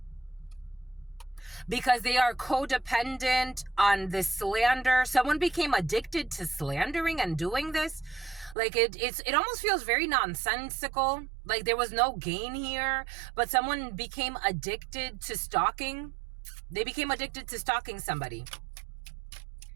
Because they are codependent on this slander. Someone became addicted to slandering and doing this. Like it almost feels very nonsensical. Like there was no gain here, but someone became addicted to stalking. They became addicted to stalking somebody.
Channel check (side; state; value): left; drops out; at 8.6 s